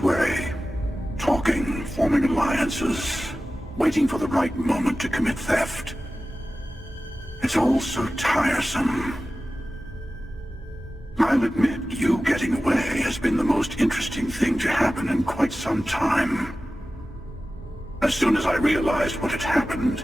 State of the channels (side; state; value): both; normal; correlation 0.95